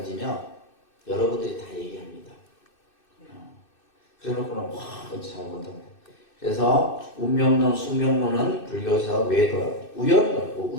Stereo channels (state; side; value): late; right; 2.6 ms